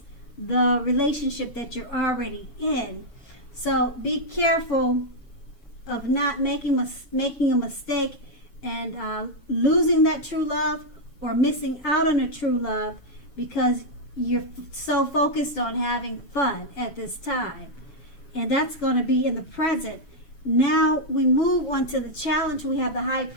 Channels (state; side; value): late; right; 7.2 ms